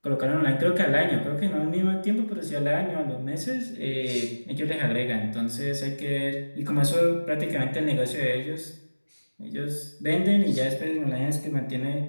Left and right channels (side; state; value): both; inverted; correlation -1.00